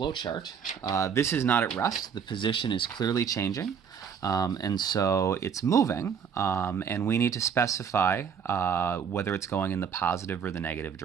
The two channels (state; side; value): quieter; left; 7.1 dB